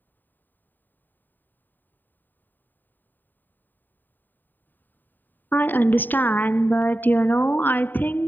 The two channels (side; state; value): right; late; 0.090 ms